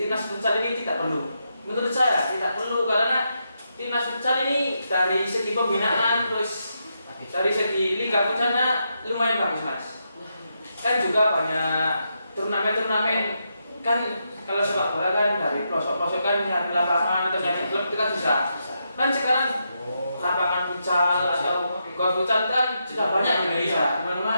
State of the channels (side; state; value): both; inverted; correlation -0.83